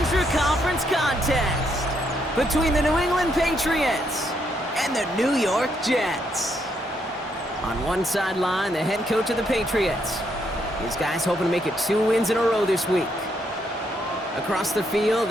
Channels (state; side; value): normal; both; correlation 0.75